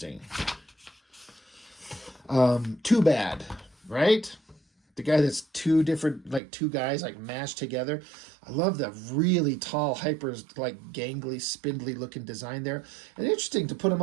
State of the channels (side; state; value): left; drops out; at 6.4 s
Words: Too Bad, right? The guy that's two guys like mashed together. I love the really tall, hyper, like gangly, spindly looking design there. And interesting to put him